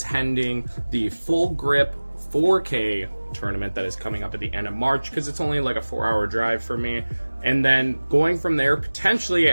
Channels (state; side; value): inverted; both; correlation -1.00